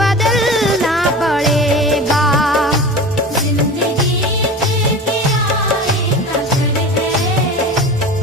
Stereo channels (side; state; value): both; normal; correlation 0.33